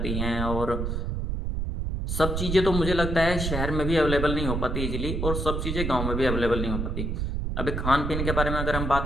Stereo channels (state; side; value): noise; right; rumble, 2 dB below the sound